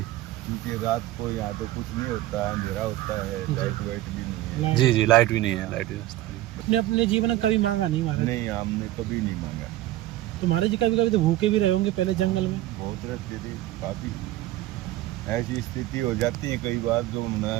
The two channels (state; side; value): quieter; left; 15.5 dB